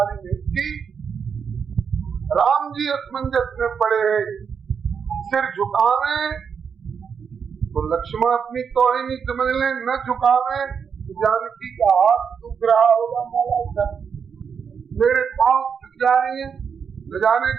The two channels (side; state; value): left; quieter; 6.6 dB